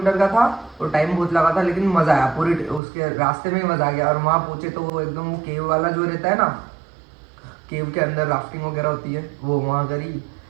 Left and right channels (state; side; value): drops out; left; at 2.8 s